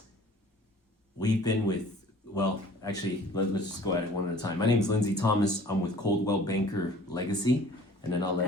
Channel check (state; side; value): normal; both; correlation 0.50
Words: we've been with actually let's just go at it one at a time. My name is Lindsey Thomas. I'm with Coldwell Banker Legacy, and then I'll let.